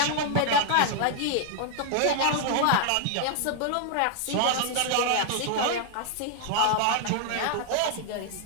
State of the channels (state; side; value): different; both; correlation 0.00